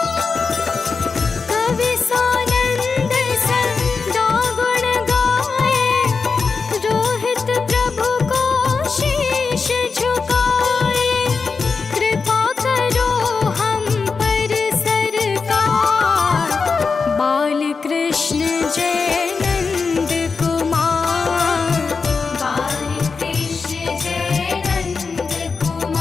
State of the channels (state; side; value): quieter; right; 4.8 dB